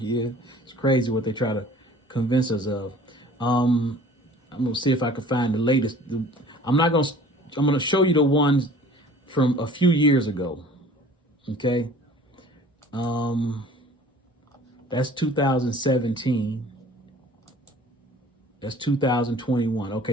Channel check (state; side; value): normal; both; correlation 0.48